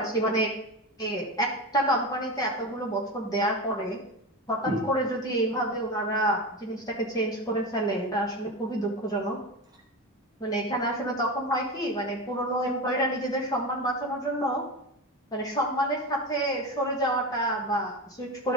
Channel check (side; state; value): both; normal; correlation 0.22